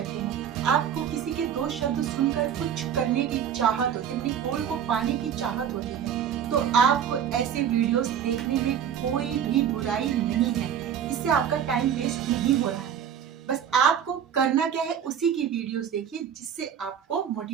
हैं, आपको किसी के 2 शब्द सुनकर कुछ करने की चाहत होती है, अपनी गोल को पाने की चाहत होती है, तो आपको ऐसे वीडियोस देखने में कोई भी बुराई नहीं है। इससे आपका टाइम वेस्ट नहीं हो रहा है। बस आपको करना क्या है, उसी की वीडियोस देखिए जिससे आपको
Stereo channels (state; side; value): quieter; left; 8.7 dB